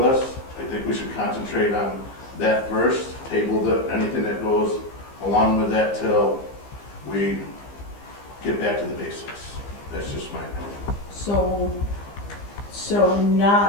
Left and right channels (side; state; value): right; late; 15 ms